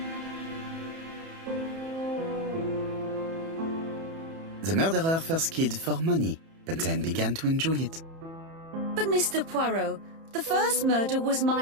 The murderer first killed for money, but then began to enjoy it. But Mr. Poirot, the first murder was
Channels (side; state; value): left; late; 30 ms